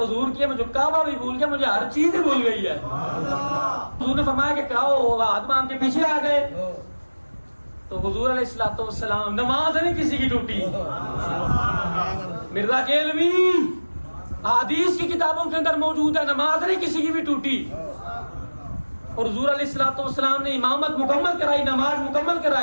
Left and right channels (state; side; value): inverted; both; correlation -1.00